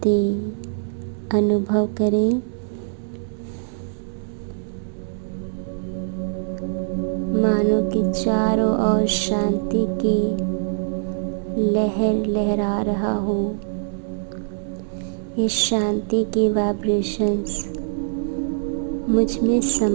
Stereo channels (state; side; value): silent; left; 63 dB below the other